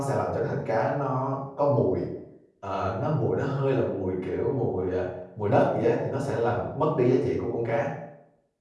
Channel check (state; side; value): identical; both; correlation 1.00